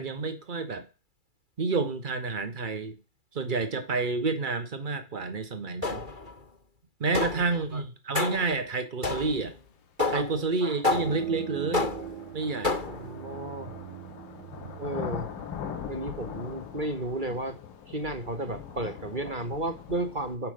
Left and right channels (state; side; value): late; left; 2.3 ms